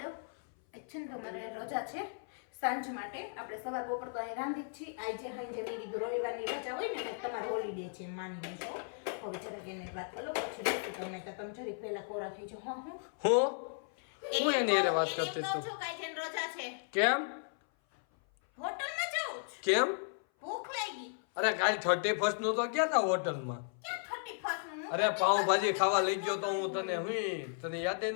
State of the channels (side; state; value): right; silent; 54 dB below the other